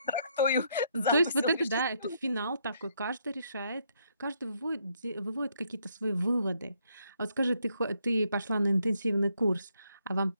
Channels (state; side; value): inverted; both; correlation -0.73